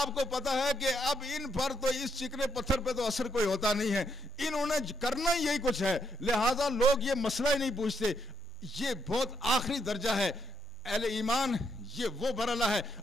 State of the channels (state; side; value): normal; both; correlation 0.84